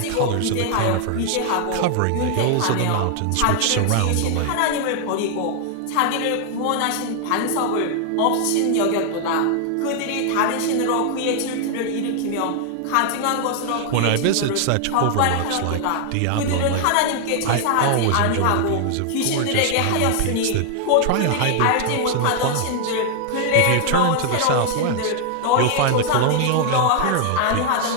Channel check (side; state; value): both; different; correlation 0.00